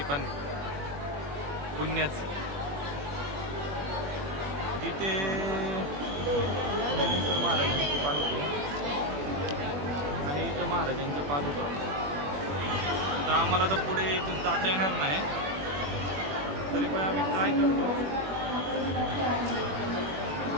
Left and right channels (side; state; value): left; late; 21 ms